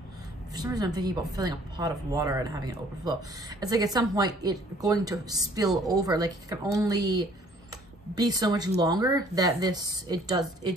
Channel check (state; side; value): normal; both; correlation 0.57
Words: for some reason I'm thinking about filling a pot of water and having it overflow. It's like at some point it's going to spill over. Like, it can only be so much longer that it